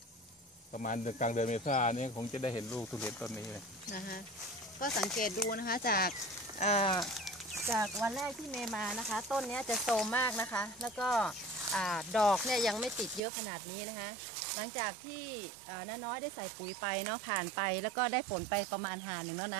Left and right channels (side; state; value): left; drops out; at 13.2 s